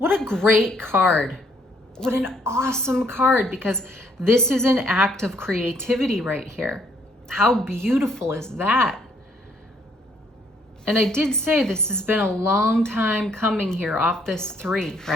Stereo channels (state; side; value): normal; both; correlation 0.67